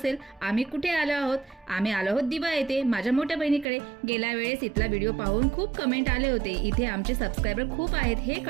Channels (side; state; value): left; drops out; at 3.7 s